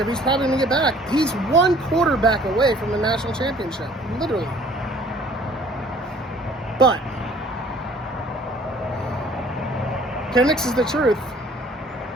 He's probably going to get back. He's one quarterback away from the national championship, literally. But Penix is the truth.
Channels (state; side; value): normal; both; correlation 0.55